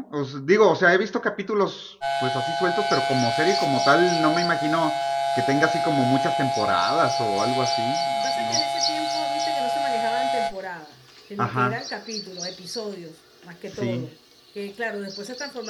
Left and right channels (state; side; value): identical; both; correlation 1.00